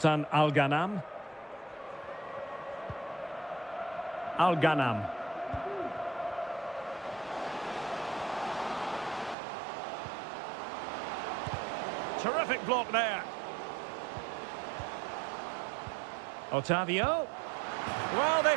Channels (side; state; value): left; drops out; at 9.3 s